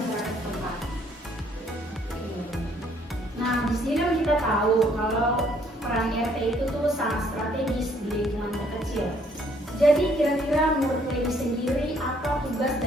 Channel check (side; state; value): both; normal; correlation 0.65